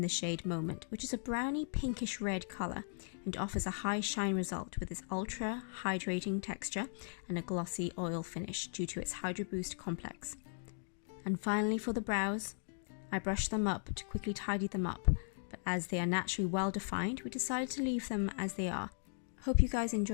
the shade Moment, which is a browny pinkish red colour and offers a high shine result with its ultra hydrating texture and a glossy oil finish due to its Hydra Boost complex. And finally for the brows, I brushed them up to quickly tidy them up, but as they are naturally well defined, we decided to leave them as they are. Hope you guys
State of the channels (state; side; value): silent; right; digital silence